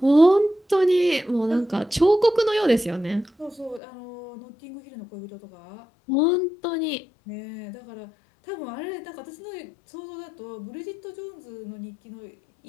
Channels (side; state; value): right; drops out; at 3.8 s